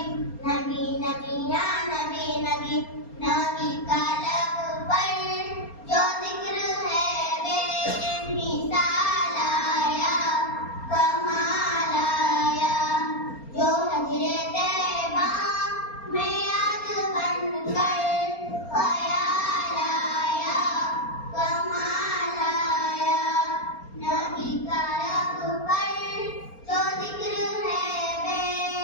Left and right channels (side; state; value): right; late; 4.3 ms